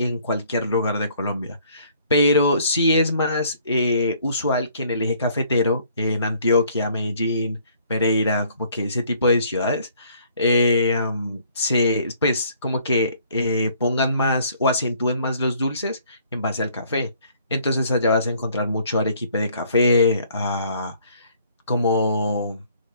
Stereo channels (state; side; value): inverted; both; correlation -0.60